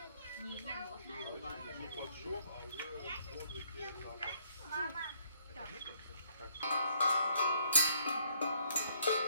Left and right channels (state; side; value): inverted; both; correlation -0.66